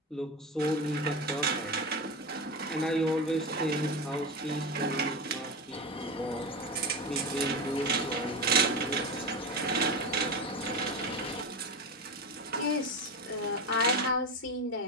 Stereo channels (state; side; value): normal; both; correlation 0.20